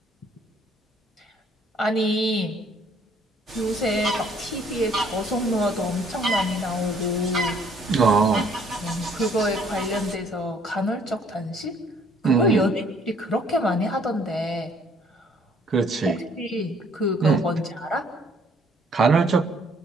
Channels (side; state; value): both; normal; correlation 0.61